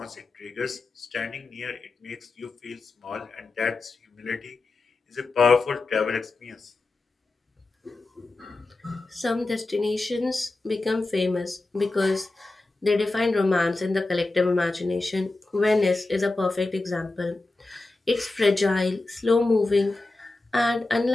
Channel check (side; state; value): right; quieter; 3.2 dB